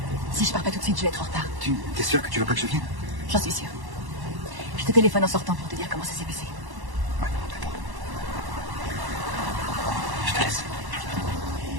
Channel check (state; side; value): late; left; 1.1 ms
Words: Si je pars pas tout de suite, je vais être en retard. Tu es sûr que tu veux pas que je vienne? J'en suis sûre. Je te téléphone en sortant pour te dire comment ça s'est passé. Ouais, d'accord. Je te laisse.